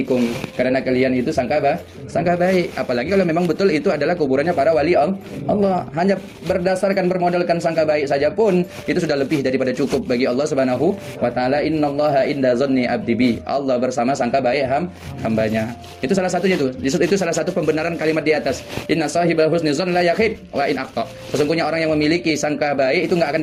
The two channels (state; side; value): identical; both; correlation 1.00